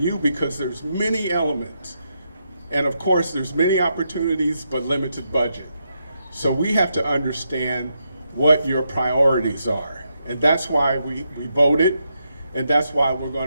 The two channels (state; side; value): inverted; both; correlation -0.82